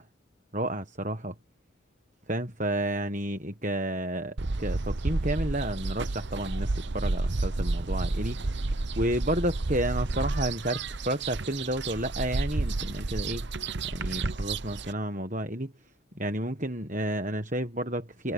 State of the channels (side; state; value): both; normal; correlation 0.58